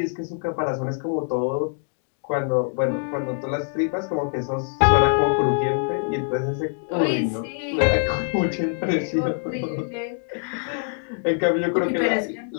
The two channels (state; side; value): silent; right; 63 dB below the other